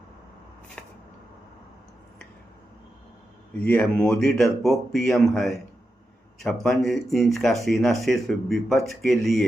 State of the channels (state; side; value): normal; both; correlation 0.88